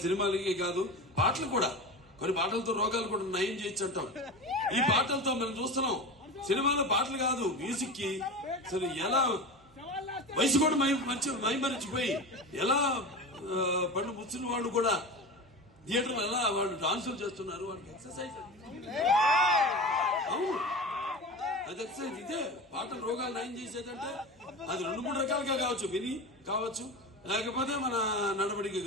సినిమాలకి కాదు, పాటలు కూడా, కొన్ని పాటలతో రోగాలు కూడా నయం చేయొచ్చు అంటాం. ఈ పాటలతో మనం చూస్తున్నాం. సినిమాలో పాటలు కాదు, మ్యూజిక్ కి అసలు ఎలా వయసు కూడా మైమరిచిపోయి ఎలా పళ్ళు ముచ్చిన వాళ్ళు కూడా థియేటర్లో ఎలా వాళ్ళు డాన్సులు చేస్తున్నారు. వాళ్ళకి ఎక్సర్సైజ్. అవును, అది ఎక్సర్సైజ్. ఇదే పాటలు రోగాలు నయం చేసేదంటే అది 2-3 రకాలుగా కావచ్చు. విని కావచ్చు, లేకపోతే మన నడవడికి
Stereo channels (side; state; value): both; normal; correlation 0.28